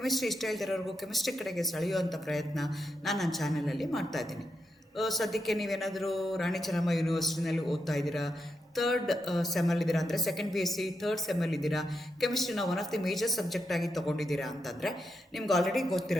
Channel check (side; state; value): both; normal; correlation 0.84